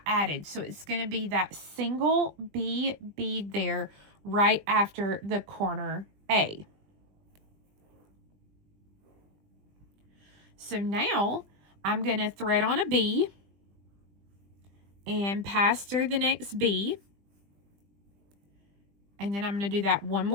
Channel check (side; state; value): left; late; 20 ms